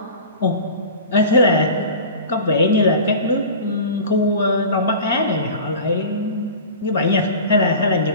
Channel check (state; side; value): inverted; both; correlation -0.36